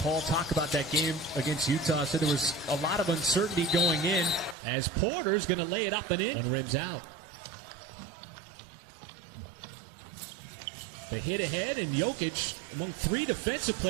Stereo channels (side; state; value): left; drops out; at 4.5 s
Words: talk about that game against Utah. Said there was a lot of uncertainty going in as Porter's going to lay it up and in. One rim's out. They hit ahead, and Jokic, among three defensive